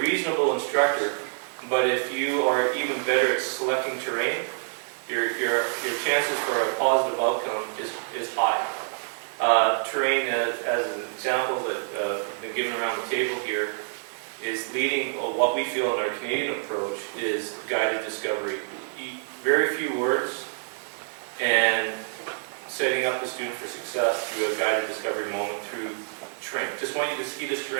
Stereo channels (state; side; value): silent; left; digital silence